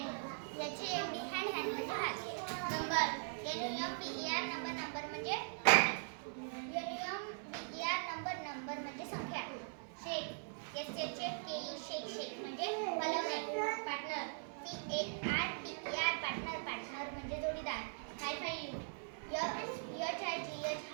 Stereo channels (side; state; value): left; silent; 51 dB below the other